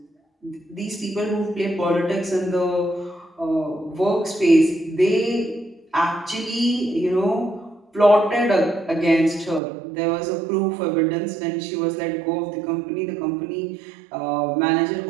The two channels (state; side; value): drops out; left; at 9.6 s